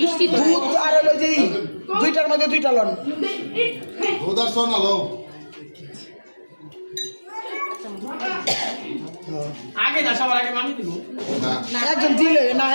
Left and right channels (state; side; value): inverted; both; correlation -1.00